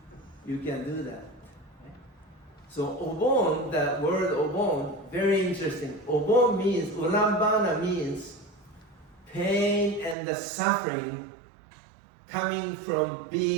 You can do that. Okay? So Obon, that word Obon, very interesting. Obon means, Ulambana means pain and the suffering coming from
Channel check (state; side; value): drops out; left; at 10.2 s